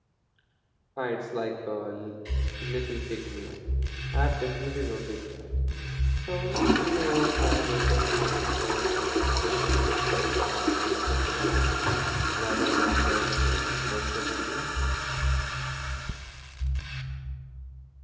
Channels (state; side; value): identical; both; correlation 1.00